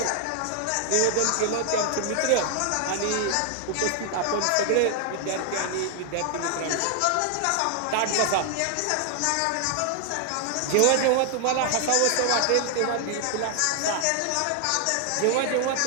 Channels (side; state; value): both; different; correlation 0.00